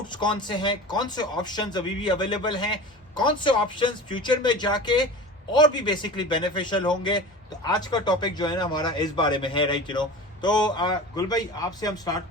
कौन से हैं, कौन से ऑप्शंस अभी भी अवेलेबल हैं, कौन से ऑप्शंस फ्यूचर में जाके और भी बेसिकली बेनिफिशियल होंगे। तो आज का टॉपिक जो है ना हमारा इस बारे में है, राइट तो गुल भाई आपसे हम स्टार्ट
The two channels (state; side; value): normal; both; correlation 0.34